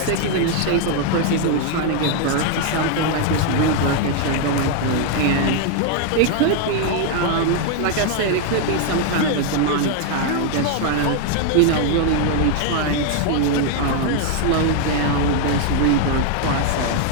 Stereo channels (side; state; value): both; different; correlation 0.00